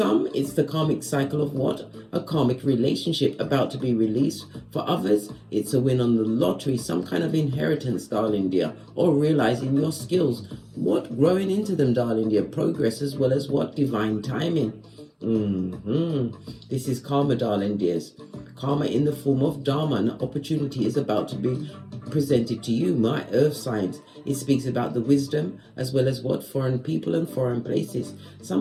it's the karmic cycle of what? A karmic relationship about to be released. For others, it's a win on the lottery, some kind of inheritance, darling dear, or realizing your skills. What? Growing into them, darling dear. Progress as well as what? Divine timing. This is karma, darling dears. Karma in the form of dharma. An opportunity is about to be presented to you, my earth signs. It speaks about the wisdom as well as what? Foreign people and foreign places.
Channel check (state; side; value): identical; both; correlation 1.00